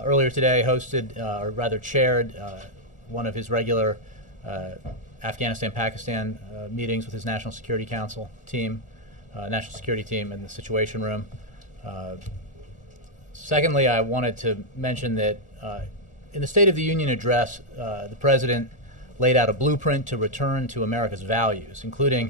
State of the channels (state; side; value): late; right; 1.4 ms